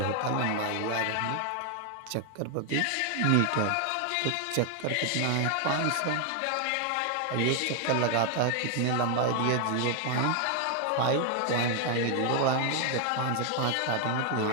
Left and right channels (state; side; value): different; both; correlation 0.00